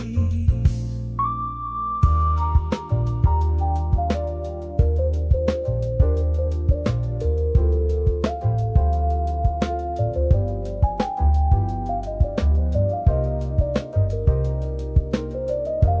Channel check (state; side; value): identical; both; correlation 1.00